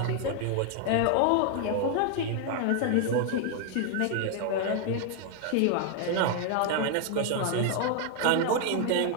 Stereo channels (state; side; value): different; both; correlation 0.00